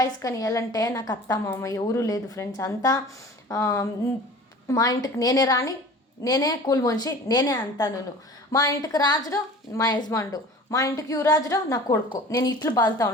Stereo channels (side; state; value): both; normal; correlation 0.42